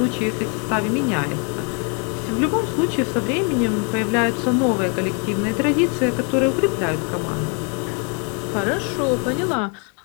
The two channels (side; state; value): right; quieter; 37.0 dB